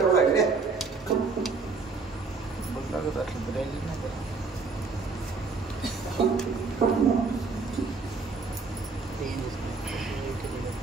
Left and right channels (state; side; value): quieter; left; 4.5 dB